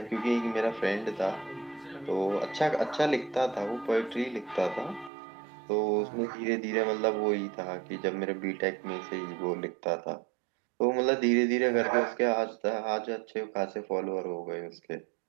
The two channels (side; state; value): left; drops out; at 5.1 s